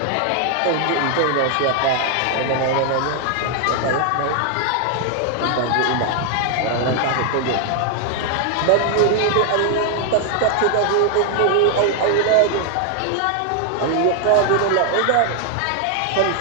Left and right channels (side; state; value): both; different; correlation 0.00